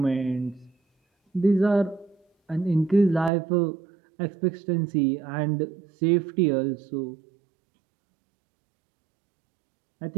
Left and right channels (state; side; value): drops out; left; at 3.3 s